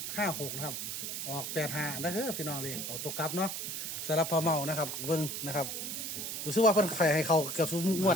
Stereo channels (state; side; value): noise; right; hiss, 4 dB below the sound